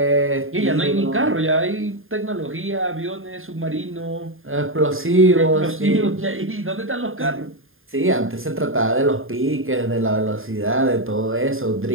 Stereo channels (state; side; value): late; left; 0.59 ms